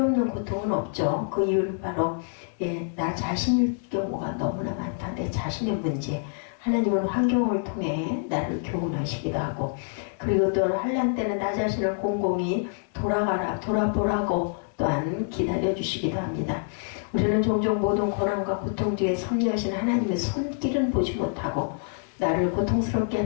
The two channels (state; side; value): silent; right; 61 dB below the other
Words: 고통은 없죠. 그 이유는 바로 나 자신일 경우가 너무나 많다. 내 자신의 문제. 하나님은 환경을 통해 나를 교훈하시기도 하고, 그리고 또 환난 때는 나 자신을 곰곰이 돌아보라고 또한 기다려주시기도 합니다. 우리는 종종 모든 고난과 고통 뒤에 섭리하신 하나님의 손길은 보지 못하고 나를 고통스럽게